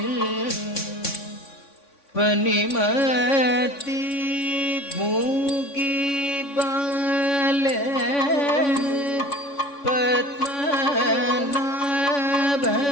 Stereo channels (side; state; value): right; late; 3.6 ms